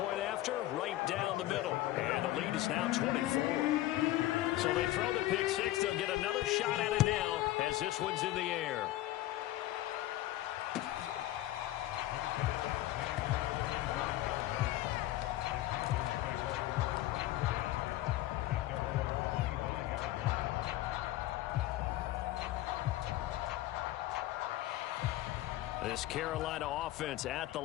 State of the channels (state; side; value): quieter; right; 15.5 dB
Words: after, right down the middle. And the lead is now 24. So they throw the pick 6. They'll get another shot at it now as this one's in the air. This Carolina offense at the